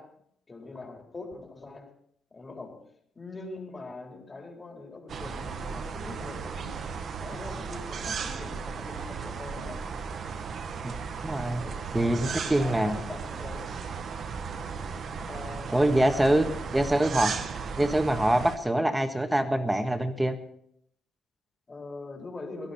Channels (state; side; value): normal; both; correlation 0.93